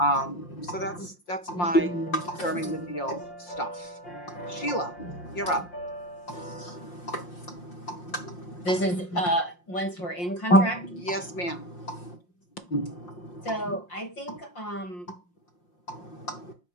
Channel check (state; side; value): late; right; 5.7 ms